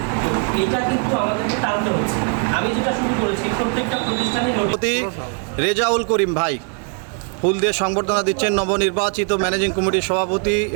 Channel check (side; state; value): left; quieter; 39.3 dB